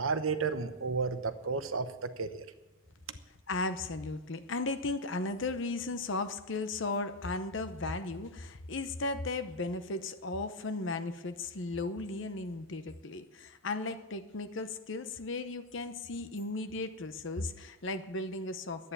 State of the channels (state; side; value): normal; both; correlation -0.01